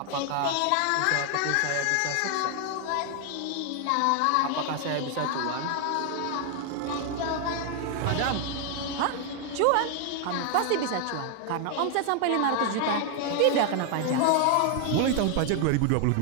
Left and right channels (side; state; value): both; different; correlation 0.00